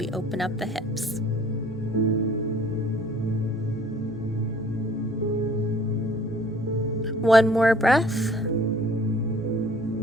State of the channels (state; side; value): normal; both; correlation 0.54